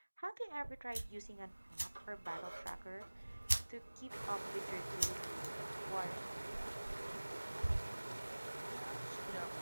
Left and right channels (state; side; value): inverted; both; correlation -1.00